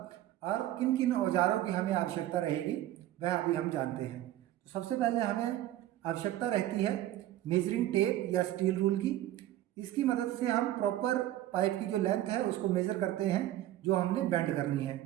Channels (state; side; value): quieter; left; 13.8 dB